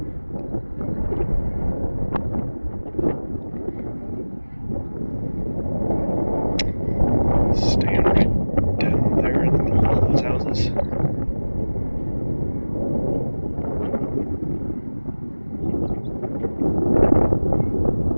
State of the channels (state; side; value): inverted; both; correlation -1.00